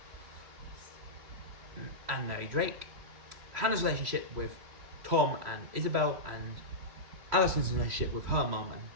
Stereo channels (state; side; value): late; left; 3.0 ms